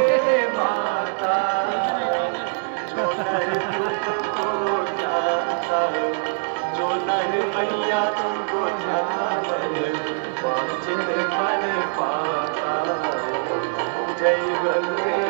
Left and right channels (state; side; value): silent; left; digital silence